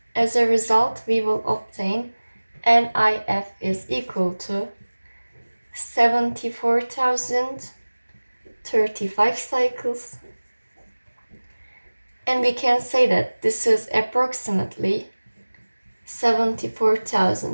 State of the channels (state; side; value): inverted; both; correlation -1.00